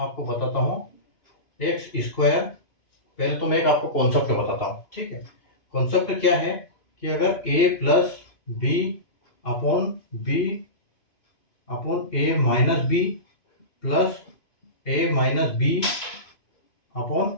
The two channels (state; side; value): late; right; 2.5 ms